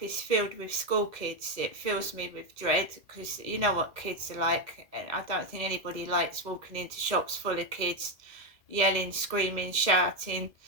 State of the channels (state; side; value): late; left; 2.0 ms